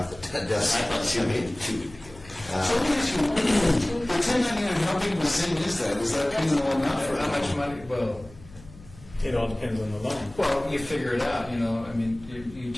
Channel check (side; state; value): left; noise; hum, 20 dB below the sound